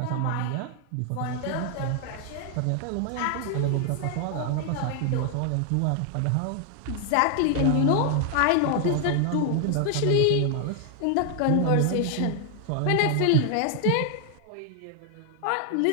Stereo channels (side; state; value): both; different; correlation 0.00